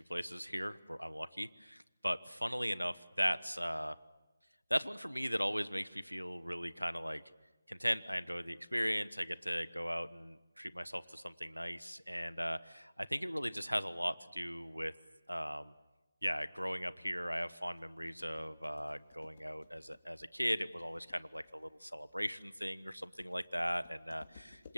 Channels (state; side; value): inverted; both; correlation -1.00